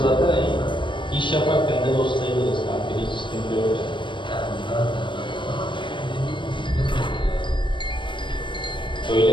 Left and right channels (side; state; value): right; late; 0.23 ms